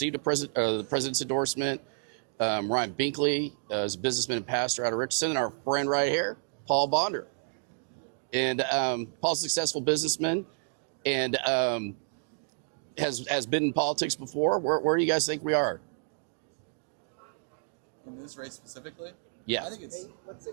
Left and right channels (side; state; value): left; silent; digital silence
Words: the president's endorsement. Ryan Binkley is a businessman and pastor out of Richardson. And our friend right here, Paul Bonder. And Paul's a successful businessman and has been in politics before. Where do you guys think we are? In this race specifically? Yeah. I think it's...